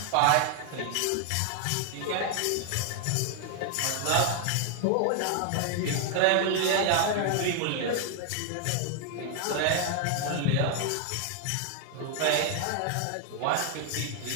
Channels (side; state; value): both; different; correlation 0.00